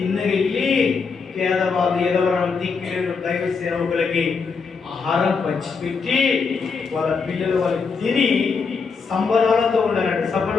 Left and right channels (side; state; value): right; quieter; 5.2 dB